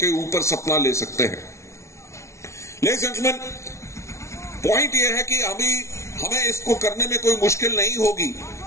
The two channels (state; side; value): late; right; 0.13 ms